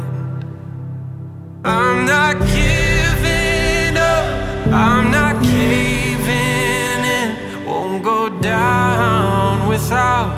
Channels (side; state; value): both; identical; correlation 1.00